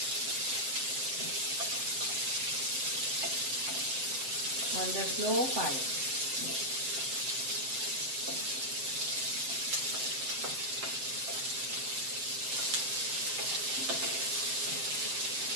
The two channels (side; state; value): left; late; 7.7 ms